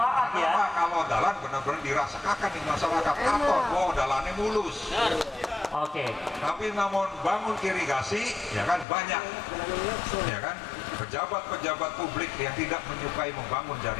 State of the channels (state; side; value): drops out; right; at 8.8 s